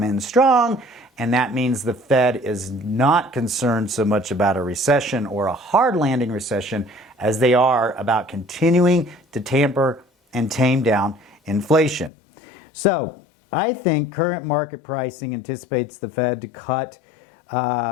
in strong, and that means the Fed is not concerned so much about a recession or a hard landing recession as they are about continuing to tamper and tame down inflation. So I think current market pricing anticipates the Fed to cut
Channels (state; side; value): drops out; right; at 12.1 s